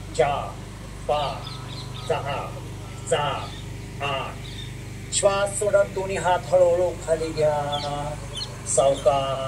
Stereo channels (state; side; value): identical; both; correlation 1.00